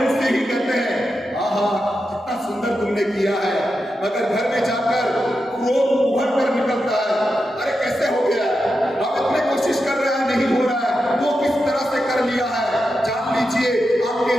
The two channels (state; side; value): normal; both; correlation 0.88